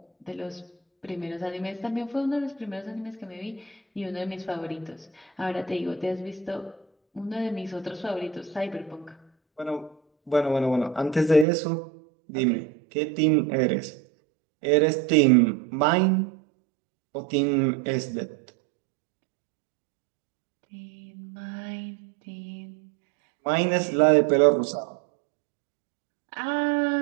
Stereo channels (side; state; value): left; drops out; at 11.5 s